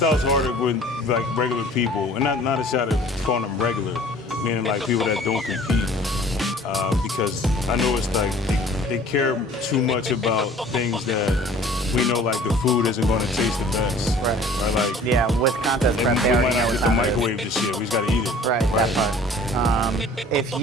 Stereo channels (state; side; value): normal; both; correlation 0.49